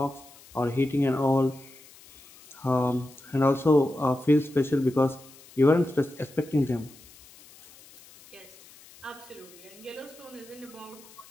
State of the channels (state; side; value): noise; left; hiss, 23 dB below the sound